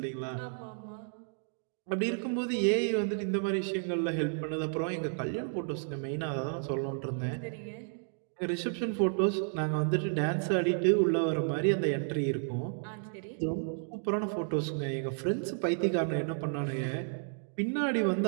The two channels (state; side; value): silent; left; digital silence